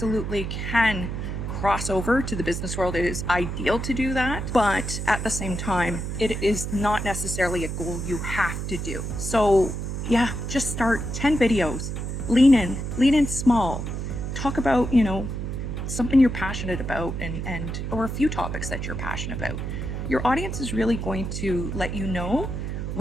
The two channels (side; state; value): right; noise; hum, 4 dB below the sound